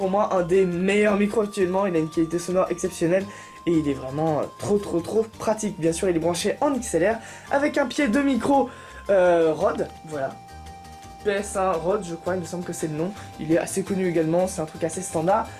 moi un des meilleurs micros actuellement, il a une qualité sonore exceptionnelle et il est vraiment trop pratique. Bien sûr il est branché en XLR avec un pied de micro Rode, voilà. PS1 Rode je crois, il me semble que c'est le nom, il est assez connu également, c'est un truc assez standard.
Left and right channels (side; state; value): both; identical; correlation 1.00